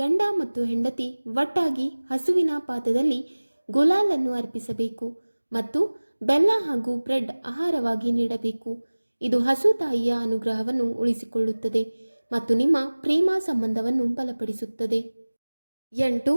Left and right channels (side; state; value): both; inverted; correlation -1.00